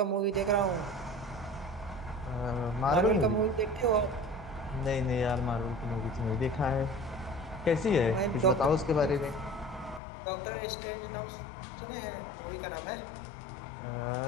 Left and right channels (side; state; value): right; drops out; at 10.0 s